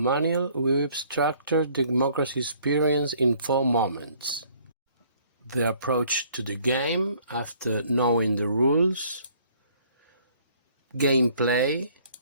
we've structured democracy experience in 4 moments: the approach to the game after knowing the rules, gameplay,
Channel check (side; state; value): both; inverted; correlation -0.60